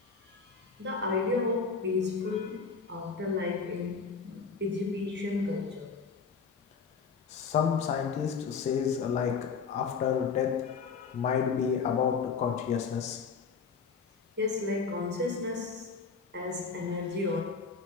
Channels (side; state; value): right; quieter; 5.4 dB